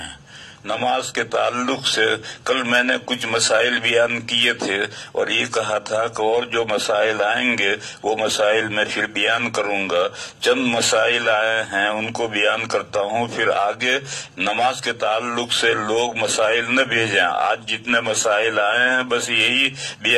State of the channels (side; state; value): both; identical; correlation 1.00